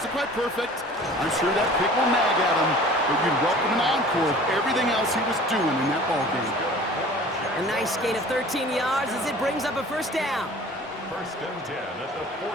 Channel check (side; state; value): both; normal; correlation 0.45